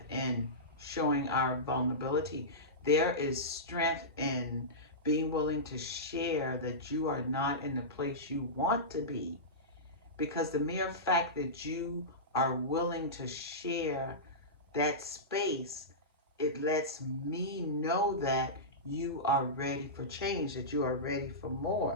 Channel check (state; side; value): normal; both; correlation -0.16